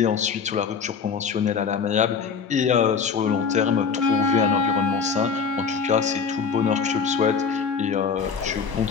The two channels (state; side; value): quieter; right; 5.9 dB